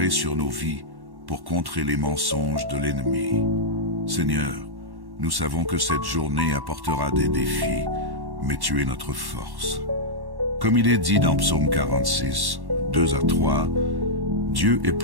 sur nos vies pour contrer les mensonges de l'ennemi. Seigneur, nous savons que cette journée apportera des défis, mais tu es notre force. Comme il est dit dans Psaume 46, 2 à 3, Dieu est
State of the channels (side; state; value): left; late; 1.1 ms